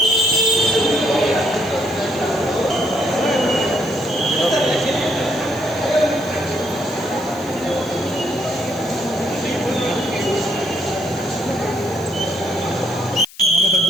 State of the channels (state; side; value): noise; left; hiss, 21 dB below the sound